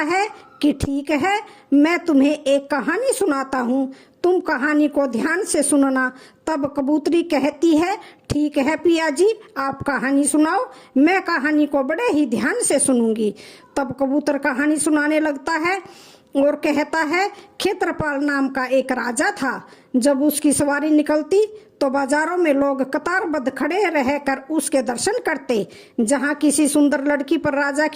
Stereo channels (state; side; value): identical; both; correlation 1.00